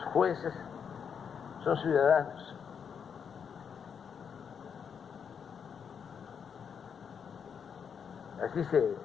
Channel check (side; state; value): right; quieter; 7.1 dB